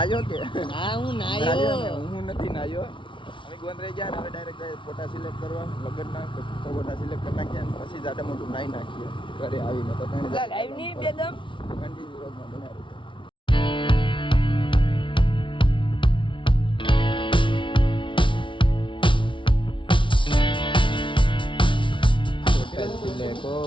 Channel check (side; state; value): right; late; 0.24 ms